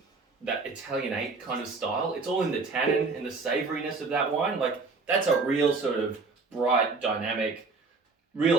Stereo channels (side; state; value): left; quieter; 4.1 dB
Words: Italianate kind of style. It's all in the tannin and the savouriness of that wine. Like that's a real sort of bright, dynamic,